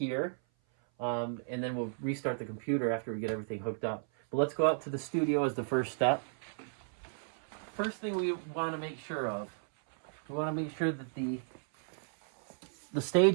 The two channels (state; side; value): silent; left; 55 dB below the other